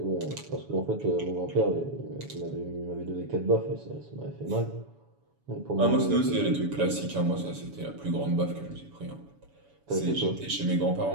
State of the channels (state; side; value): late; left; 7.1 ms